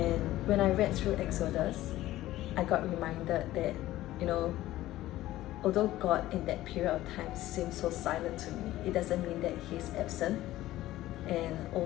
when I read through Exodus, I got reminded that, although God in that period of time seemed so silent to me, it doesn't mean that He's absent. and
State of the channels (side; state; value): right; quieter; 15.5 dB